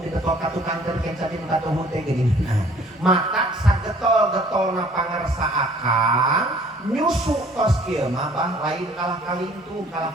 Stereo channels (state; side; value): normal; both; correlation 0.55